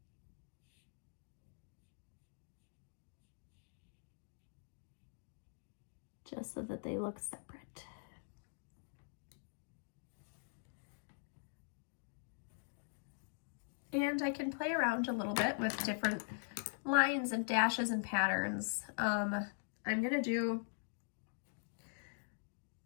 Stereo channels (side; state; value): right; silent; digital silence